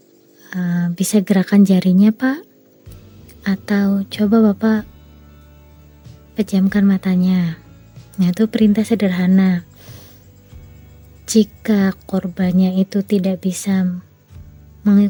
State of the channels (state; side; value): identical; both; correlation 1.00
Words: bisa gerakan jarinya, Pak? Atau coba Bapak pejamkan matanya. Nah, itu perintah sederhana. Jika korbannya itu tidak bisa